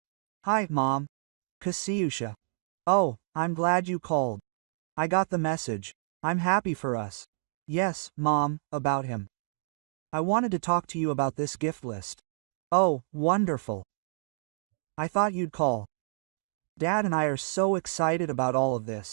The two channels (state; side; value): silent; left; digital silence